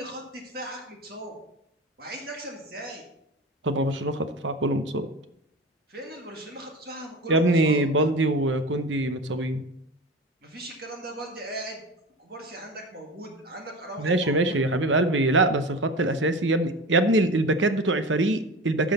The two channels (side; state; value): both; normal; correlation 0.31